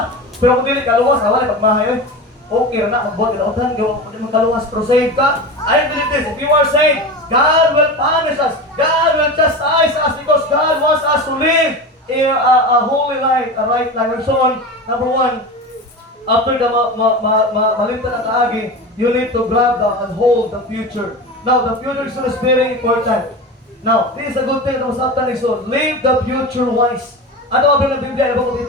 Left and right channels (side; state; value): both; normal; correlation 0.27